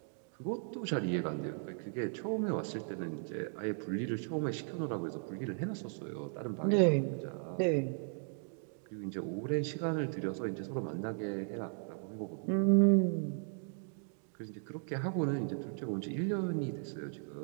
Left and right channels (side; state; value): left; silent; 54 dB below the other